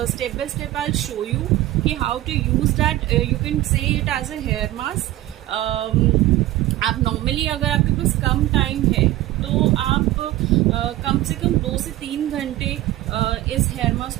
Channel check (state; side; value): quieter; left; 15.7 dB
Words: step by step I show you कि how to use that. You can say it as a hair mask. आप नॉर्मली अगर आपके पास कम टाइम है तो आप कम से कम 2 से 3 घंटे इस हेयर मास्क